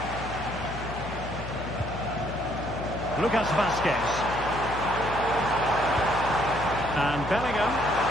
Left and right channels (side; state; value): left; noise; hum, 9 dB below the sound